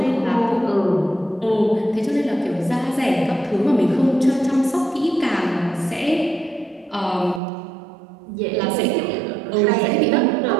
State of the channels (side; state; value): left; drops out; at 7.4 s